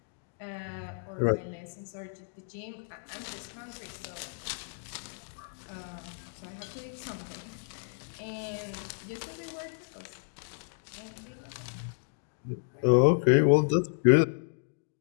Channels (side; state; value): right; silent; digital silence